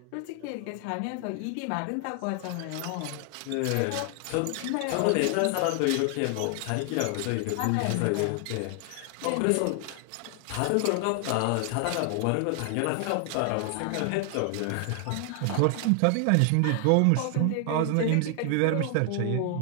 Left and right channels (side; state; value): both; different; correlation 0.00